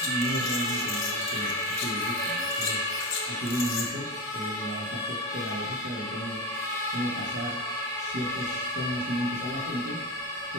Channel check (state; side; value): normal; both; correlation 0.21